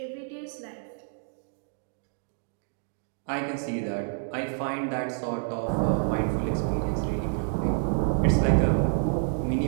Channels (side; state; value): left; silent; digital silence